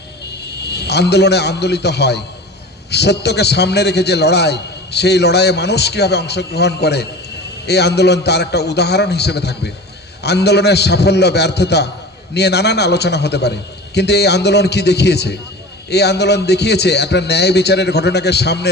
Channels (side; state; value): both; normal; correlation 0.36